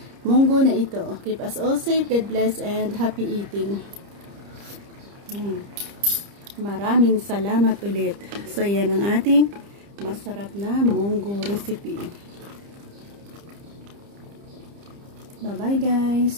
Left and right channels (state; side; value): late; left; 30 ms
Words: munggo na ito. Keep us all safe, God bless, and happy eating. Maraming salamat ulit. So, yan ang ating masarap na munggo recipe. Bye-bye,